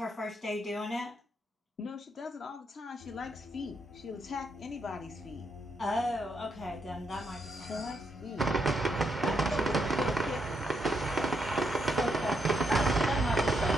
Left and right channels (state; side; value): normal; both; correlation 0.78